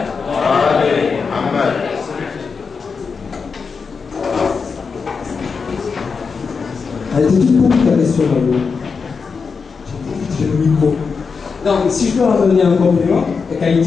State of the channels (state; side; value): quieter; right; 5.3 dB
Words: وعلى محمد. Elle était toute petite ta question, j'ai le micro. Non, si je peux revenir un complément, quand il